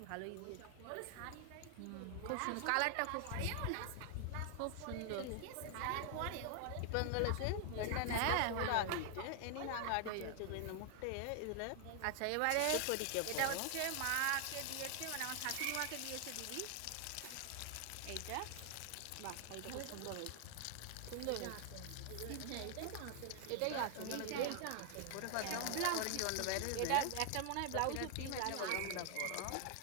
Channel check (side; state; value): both; different; correlation 0.00